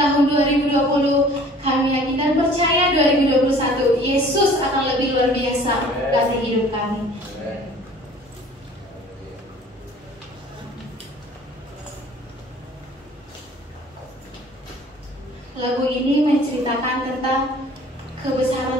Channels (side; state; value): both; normal; correlation 0.50